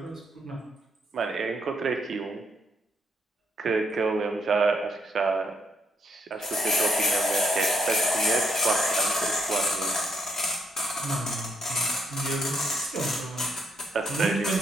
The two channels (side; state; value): both; normal; correlation 0.73